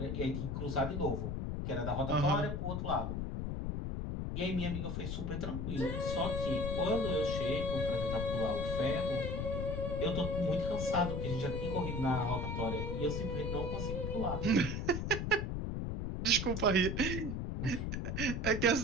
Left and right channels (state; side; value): noise; left; rumble, 2 dB below the sound